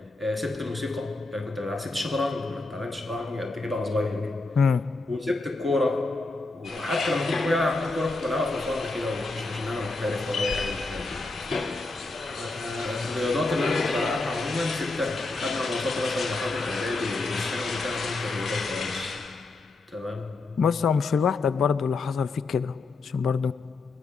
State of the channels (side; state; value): right; quieter; 3.4 dB